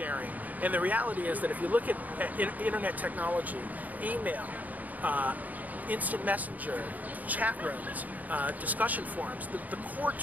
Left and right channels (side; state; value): left; late; 0.078 ms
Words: And the reality is that if you look at internet technology, email, instant messenger, chat rooms, discussion forums, the core